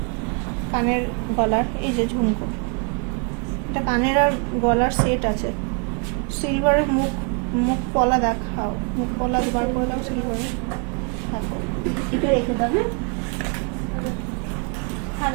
কানের গলার। এই যে ঝুমকো, এটা কানের আর গলার সেট আছে। সিলভারের মুখ পলা দেখাও, মুখ পলা বার করে দাও সিলভারের। এটা রেখে দেবে। হ্যাঁ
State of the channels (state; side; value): quieter; left; 37.0 dB